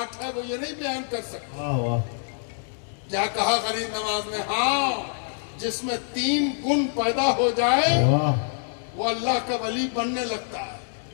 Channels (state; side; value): silent; right; digital silence